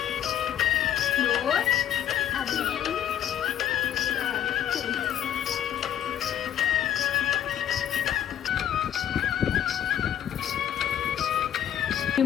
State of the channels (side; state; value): right; quieter; 10.2 dB